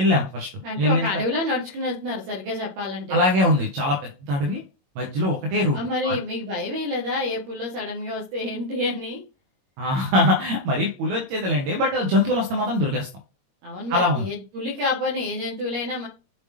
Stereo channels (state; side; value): late; left; 22 ms